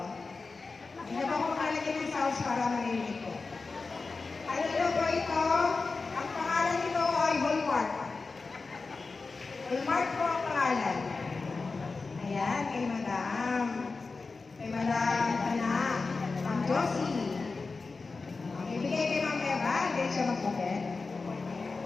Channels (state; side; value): quieter; right; 4.1 dB